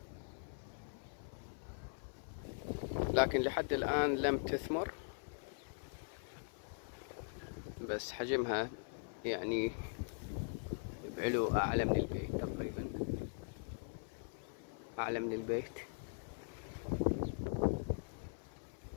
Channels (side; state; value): right; silent; 50 dB below the other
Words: لكن لحد الآن لم تثمر، بس حجمها يعني بعلو أعلى من البيت، تقريبا أعلى من البيت.